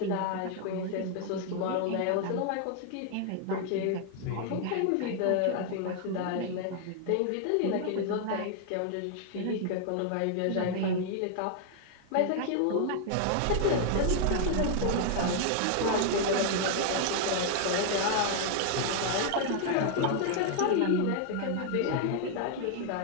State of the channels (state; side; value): different; both; correlation 0.00